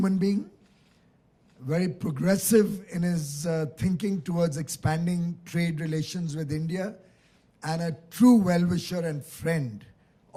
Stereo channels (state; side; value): identical; both; correlation 1.00